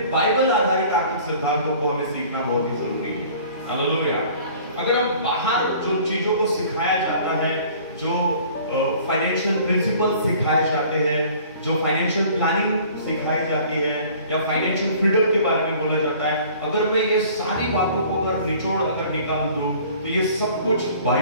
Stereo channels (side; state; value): both; inverted; correlation -0.50